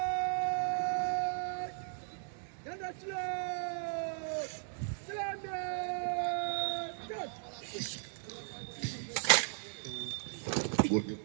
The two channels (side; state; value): left; silent; digital silence